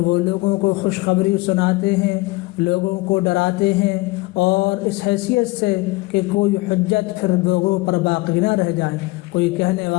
وہ لوگوں کو خوشخبری سناتے ہیں، لوگوں کو ڈراتے ہیں، اور اس حیثیت سے کہ کوئی حجت پھر لوگوں پر باقی نہ رہ جائے۔ کوئی کہنے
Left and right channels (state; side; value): quieter; right; 22.5 dB